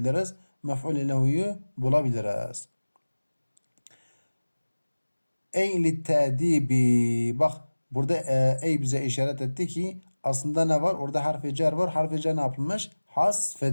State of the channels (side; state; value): both; inverted; correlation -1.00